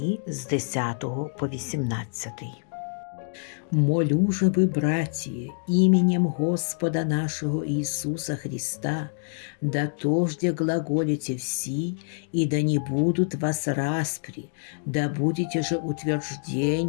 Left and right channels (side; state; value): right; silent; digital silence